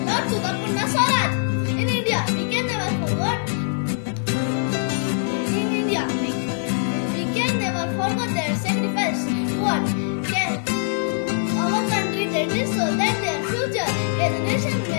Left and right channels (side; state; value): right; silent; digital silence